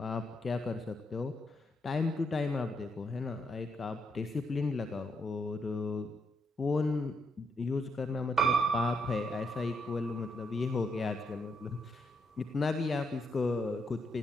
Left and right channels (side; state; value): both; normal; correlation 0.78